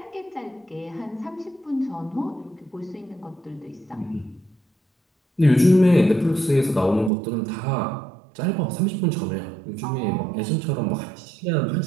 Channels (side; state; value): left; drops out; at 7.1 s